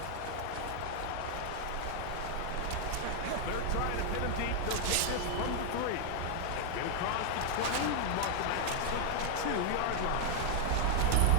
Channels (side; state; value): both; different; correlation 0.00